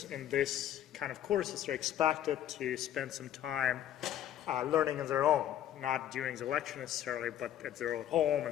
in this kind of courses are expected to spend some time learning on their own, not during the lecture necessarily, but at their own home,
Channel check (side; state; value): right; quieter; 11.3 dB